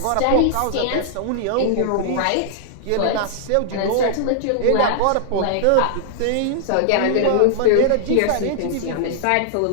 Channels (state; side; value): different; both; correlation -0.01